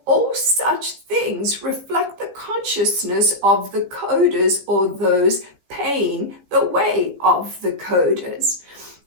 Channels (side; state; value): left; late; 16 ms